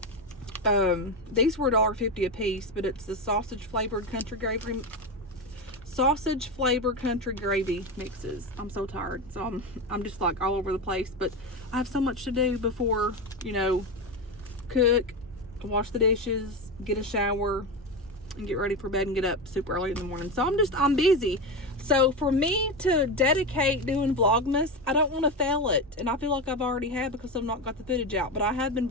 These were $1.50 a piece, but it's the sausage flavored country gravy mixes. I'm so tired, so I'm just like all over the place, but I have so much to do before, cook, wash the dishes, get a shower, and get ready for bed and get up super early in the morning. So I'm busy. So for me to dedicate doing Vlogmas, I don't want to fail it. And I feel like I've already had because I've not got the footage out. But I have been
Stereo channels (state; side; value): normal; both; correlation 0.17